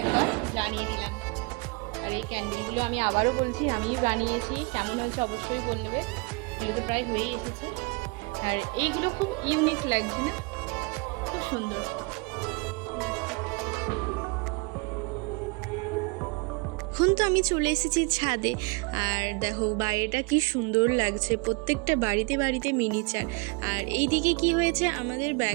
জানিয়ে দিলাম। আর এই ক্যান্ডেলগুলো আমি আবারও বলছি আমিই বানিয়েছি, কেমন হয়েছে অবশ্যই বলবে। এগুলো তো প্রায় হয়েই এসেছে। আর এইগুলো খুব ইউনিক লাগছে না, খুব সুন্দর। এখন তো আমি চলে এসেছি ছাদে, আর দেখো বাইরেটা কি সুন্দর লাগছে, প্রত্যেকটা বাড়িতে বাড়িতে মিনিচার। আর এই দিকে কি হয়েছে, আমাদের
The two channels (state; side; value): quieter; left; 29.3 dB